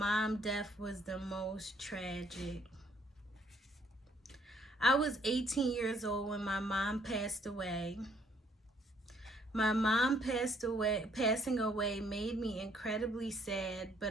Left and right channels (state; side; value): normal; both; correlation 0.66